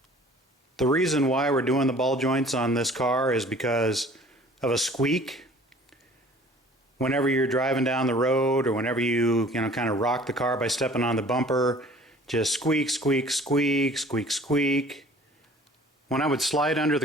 The reason why we're doing the ball joints on this car is because of a squeak. Whenever you're driving down the road, or whenever you kind of rock the car by stepping on the bumper, just squeak, squeak, squeak, squeak, squeak. When I would slide under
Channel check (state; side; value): normal; both; correlation 0.50